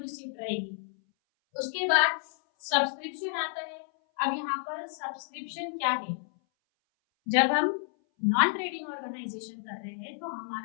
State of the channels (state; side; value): silent; right; 57 dB below the other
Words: रहेगी। उसके बाद सब्सक्रिप्शन आता है। अब यहाँ पर सब्सक्रिप्शन क्या है, जब हम नॉन ट्रेडिंग ऑर्गेनाइजेशन कर रहे हैं तो